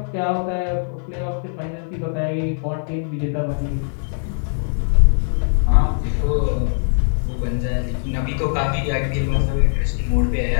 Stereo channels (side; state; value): right; silent; digital silence